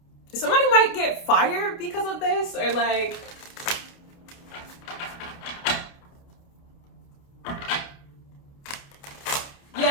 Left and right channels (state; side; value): late; right; 29 ms